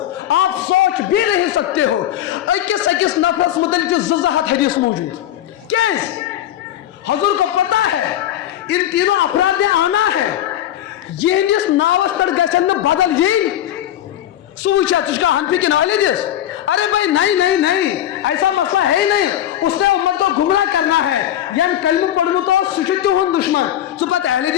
आप सोच भी नहीं सकते हो। अकिस अकिस नफरस मुतलिक 2 हदीस मौजूद। क्या हुजूर को पता है इन तीनों अपराध ने आना है, यहस नावस पर गन बदल यही सुचा तुझका हनफी की नॉलेज। अरे भाई नहीं नहीं नहीं, ऐसा मसला है ही नहीं। उसने उम्मत को गुमराह करना है। यान कलम पढ़ू तो सुचित हो दुश्मन सु पता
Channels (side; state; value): right; quieter; 12.0 dB